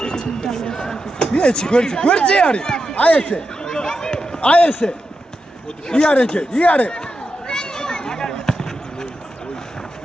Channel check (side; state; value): both; normal; correlation 0.88